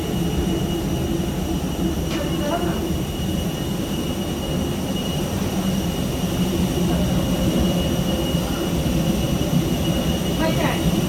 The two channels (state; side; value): identical; both; correlation 1.00